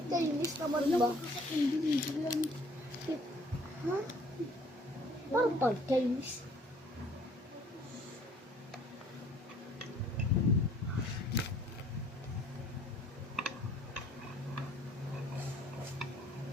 Chinese naman ba? Ha? Parang pang Chinese.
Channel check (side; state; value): both; normal; correlation 0.58